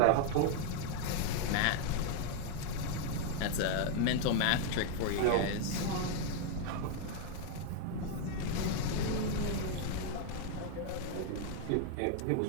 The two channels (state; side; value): different; both; correlation 0.00